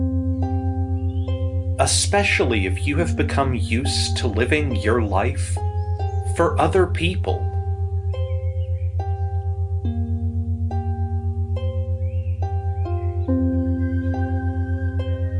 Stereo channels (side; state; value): both; identical; correlation 1.00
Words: Especially if you have become used to living your life for other people.